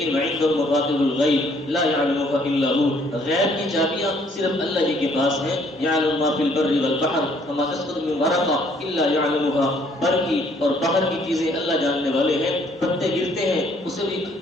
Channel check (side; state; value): both; normal; correlation 0.63